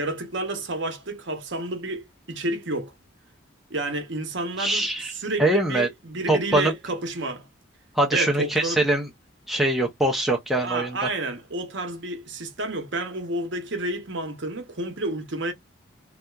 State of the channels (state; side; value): normal; both; correlation 0.41